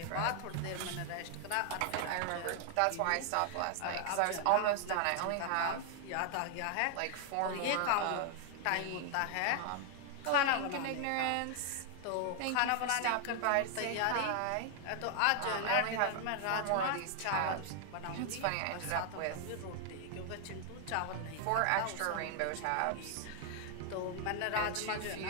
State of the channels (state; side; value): different; both; correlation 0.00